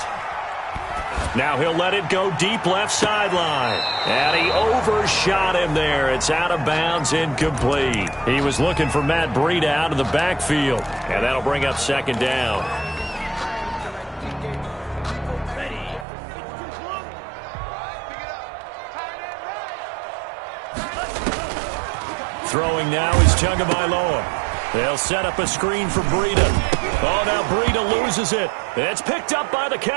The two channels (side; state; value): left; drops out; at 16.1 s